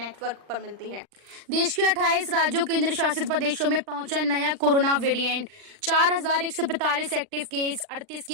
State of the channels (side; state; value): left; late; 39 ms